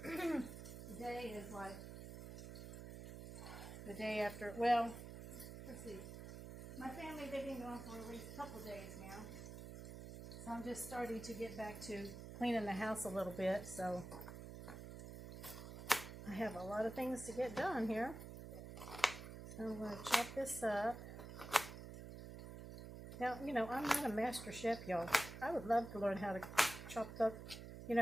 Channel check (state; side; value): noise; right; hum, 10 dB below the sound